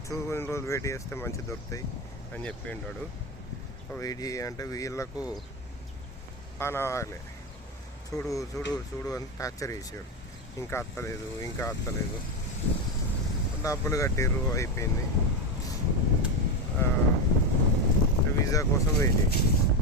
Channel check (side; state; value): both; normal; correlation 0.13